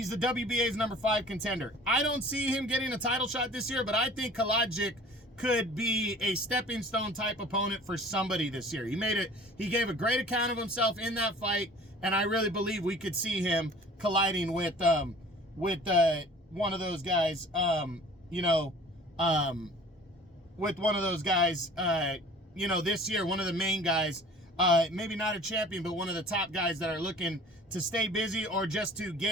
the WBA's number 5 contender. I don't see him getting a title shot this year, but I think Kalajic could be a stepping stone type opponent for somebody this year. He gave a great account of himself in that fight, and I really believe we could see him colliding with one of those guys, this year, one of the main guys, maybe not a champion, but one of the top guys that are looking to stay busy or just to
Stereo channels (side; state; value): both; normal; correlation 0.47